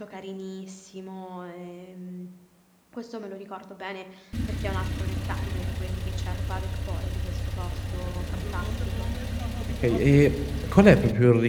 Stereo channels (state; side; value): identical; both; correlation 1.00